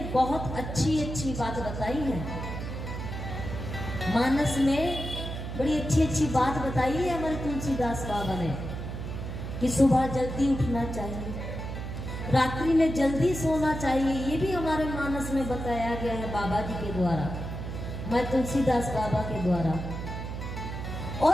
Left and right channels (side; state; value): right; noise; hum, 6 dB below the sound